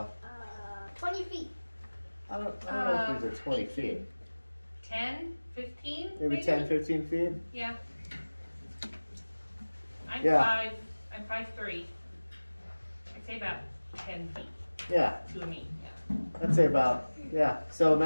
20 feet. I don't know if these are 20 feet. 10, 15? Maybe 10, 15 feet? Yeah. I'm Yeah. I'm 5'3". I'd say about 10 feet Yeah, to me. Yeah. I'd say about, yeah. So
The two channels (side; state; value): both; inverted; correlation -1.00